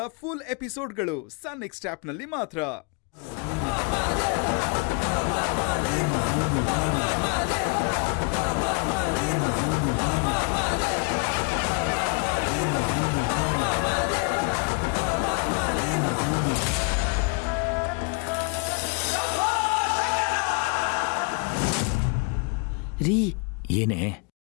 ಫುಲ್ ಎಪಿಸೋಡ್ಗಳು ಸನ್ ನೆಕ್ಸ್ಟ್ ಆಪ್ನಲ್ಲಿ ಮಾತ್ರ. ರೀ, ಏನೇ?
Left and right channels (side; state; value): right; quieter; 34.4 dB